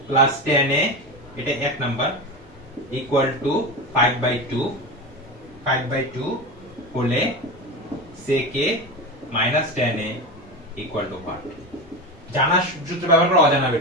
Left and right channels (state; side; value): normal; both; correlation 0.23